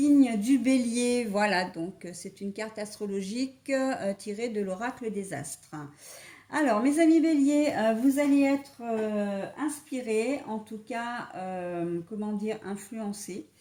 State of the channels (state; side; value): identical; both; correlation 1.00